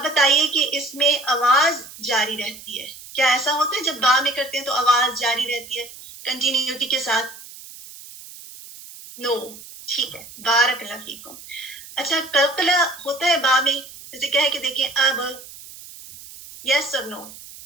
بتائیے کہ اس میں آواز جاری رہتی ہے, کیا ایسا ہوتا ہے جب با میں کرتے ہیں تو آواز جاری رہتی ہے کنٹینیوٹی کے ساتھ؟ نو. ٹھیک ہے, بارک اللہ فیکم. اچھا کلکلا ہوتا ہے با میں, جیسے کہے کہ دیکھیں اب, یس اور نو؟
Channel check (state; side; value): noise; right; hiss, 17 dB below the sound